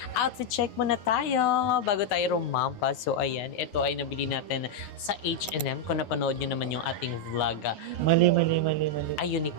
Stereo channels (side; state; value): right; late; 9.4 ms